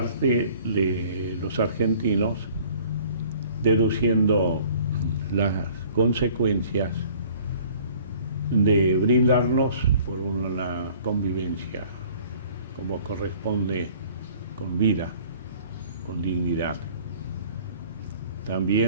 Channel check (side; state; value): both; inverted; correlation -0.53